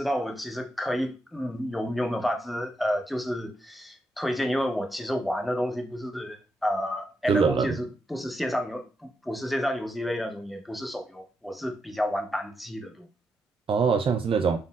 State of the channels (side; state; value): both; normal; correlation 0.82